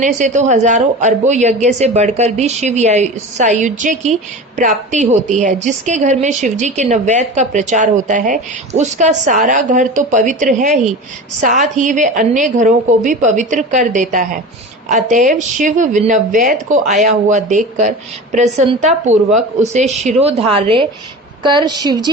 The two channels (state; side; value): normal; both; correlation 0.32